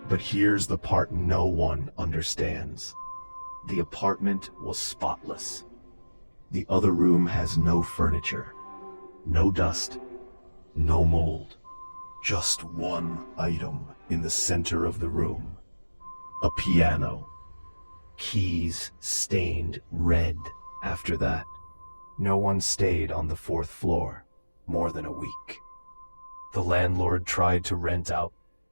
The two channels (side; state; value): both; inverted; correlation -1.00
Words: But here's the part no one understands. The apartment was spotless. The other room has no furniture, no dust, no mold. Just one item in the center of the room. A piano. Keys stained red after that. No one stayed on the 4th floor more than a week. The landlord tried to rent out